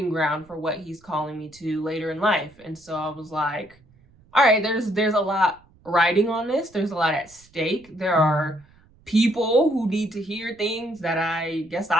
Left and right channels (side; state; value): right; noise; rumble, 29 dB below the sound